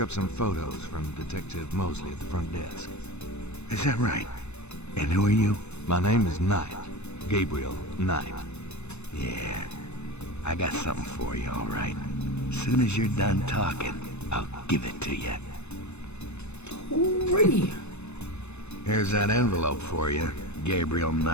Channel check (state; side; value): late; right; 0.81 ms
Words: up some photos from Detective Mosley at the front desk. Is that right? And who are you? My name is Knight. Gabriel Knight. Yeah, I got something for you, all right. As soon as you're done talking, I'll give it to you. Alrighty. Here's that envelope for you, Gabriel